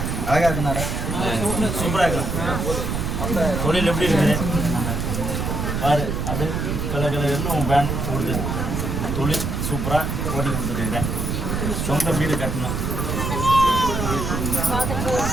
அழகா இருக்குனாரா? சூப்பராக இருக்கு. தொழில் எப்படி இருக்குது பாரு. அது கலர் கலர்னு உன் பேண்ட் கொடுத்து தொழில் சூப்பராக ஓட்டி கொடுத்துருக்குறேன். சொந்த வீடு கட்டணும்,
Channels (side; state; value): right; noise; rumble, 2 dB below the sound